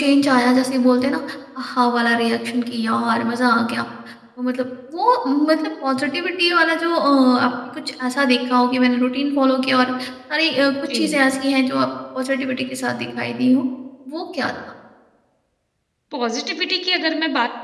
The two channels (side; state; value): both; identical; correlation 1.00